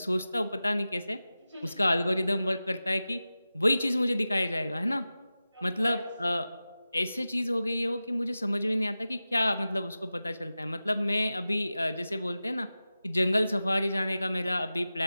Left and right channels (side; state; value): both; inverted; correlation -0.95